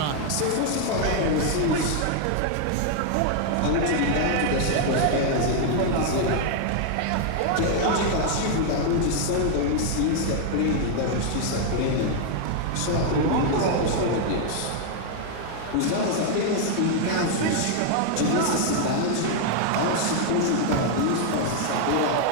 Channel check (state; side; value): different; both; correlation 0.00